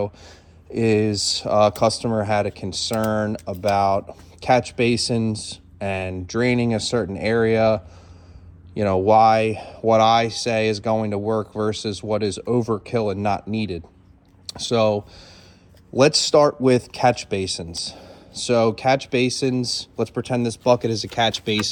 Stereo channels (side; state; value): both; identical; correlation 1.00